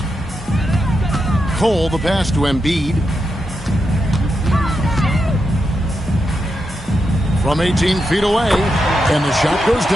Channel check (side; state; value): both; normal; correlation 0.86